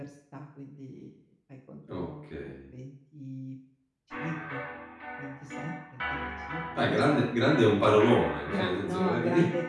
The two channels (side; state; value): both; identical; correlation 1.00